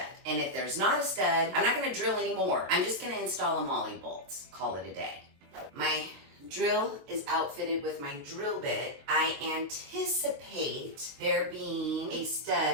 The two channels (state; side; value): late; left; 22 ms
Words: And if there's not a stud, I'm not gonna drill anymore. I'm just gonna install a molly bolt. Call it a day. My drill is outfitted with my drill bit. I anticipate there being a